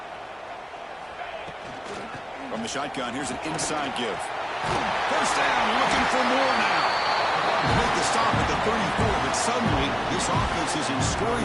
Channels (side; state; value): both; identical; correlation 1.00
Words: From the shotgun, here's an inside give. First down, looking for more suddenly, this offense is in